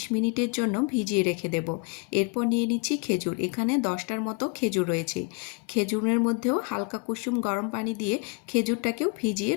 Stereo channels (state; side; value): quieter; right; 31.6 dB